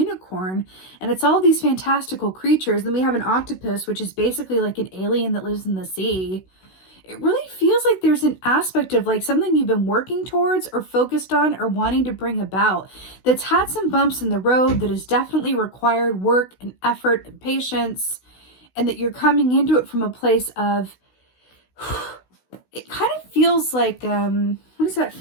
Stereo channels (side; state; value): right; late; 16 ms